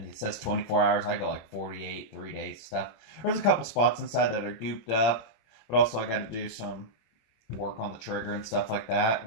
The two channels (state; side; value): late; right; 26 ms